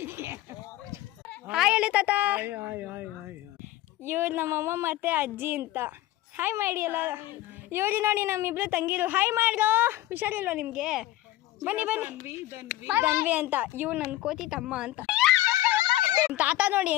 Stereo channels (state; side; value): quieter; right; 15.7 dB